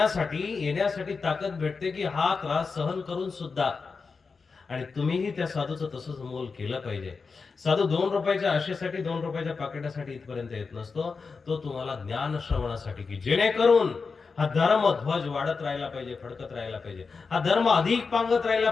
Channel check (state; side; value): quieter; right; 4.8 dB